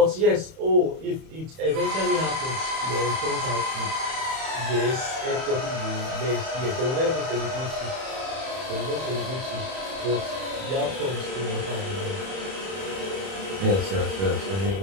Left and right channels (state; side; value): late; left; 31 ms